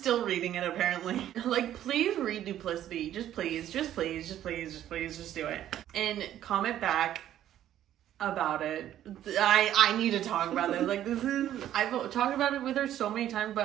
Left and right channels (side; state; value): left; quieter; 11.8 dB